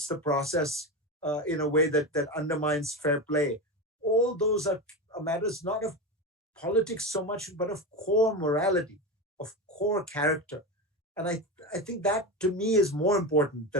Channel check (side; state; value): both; normal; correlation 0.19